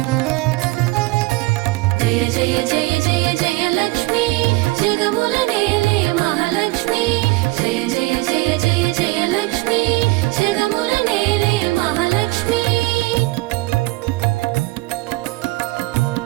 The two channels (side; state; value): left; quieter; 22.0 dB